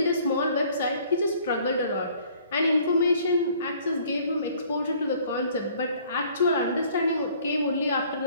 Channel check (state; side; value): inverted; both; correlation -0.57